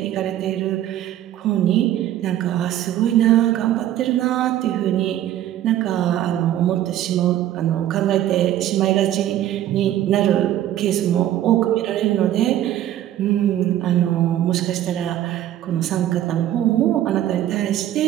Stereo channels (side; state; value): left; quieter; 12.4 dB